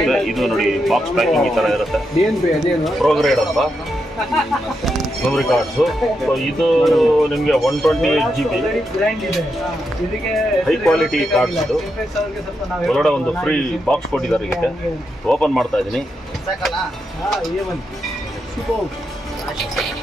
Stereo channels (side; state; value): both; normal; correlation 0.84